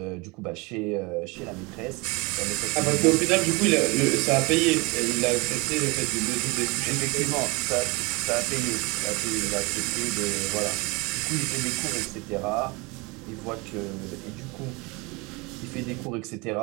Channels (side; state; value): left; quieter; 26.6 dB